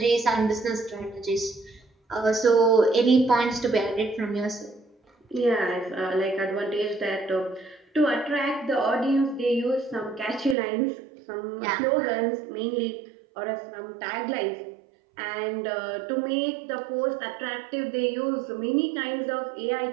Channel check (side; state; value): left; drops out; at 10.6 s